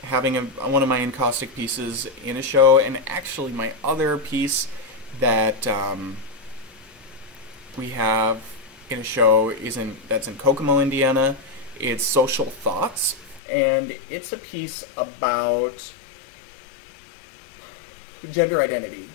having one of my encaustic pieces in a show. And actually my other piece that we have in a show that's in Kokomo, Indiana. It's Social Thoughts, and it's a piece about gender identity.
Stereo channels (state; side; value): drops out; right; at 13.4 s